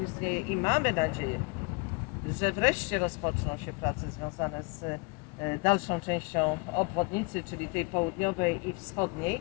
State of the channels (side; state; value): right; quieter; 30.0 dB